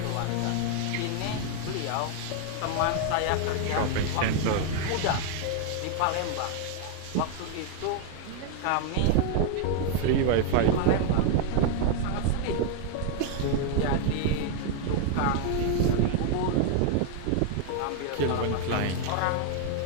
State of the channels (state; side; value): different; both; correlation 0.00